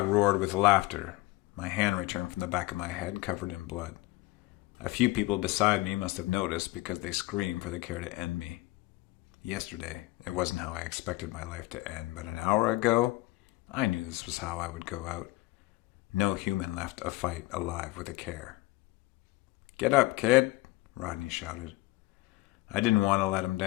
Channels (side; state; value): right; quieter; 20.1 dB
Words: roared with laughter. My hand returned from the back of my head covered in blood. A few people beside me must have noticed because they screamed for the CAIR to end me. Yesterday, it wasn't how I expected my life to end, but an hour ago, I knew this was how I would go out. No human left a fight alive with a CAIR. "Get up, kid," Rodney shouted. I didn't want to let him